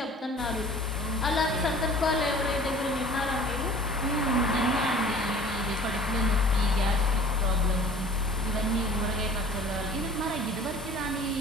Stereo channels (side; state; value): both; normal; correlation 0.47